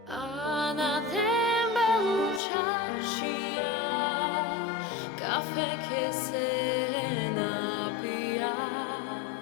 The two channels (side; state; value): right; drops out; at 2.4 s